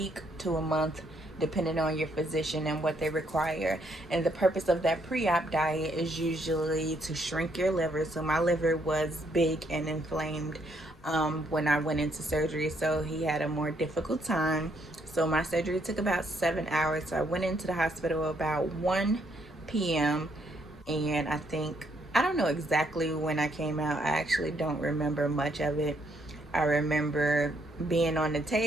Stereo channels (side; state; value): both; normal; correlation 0.72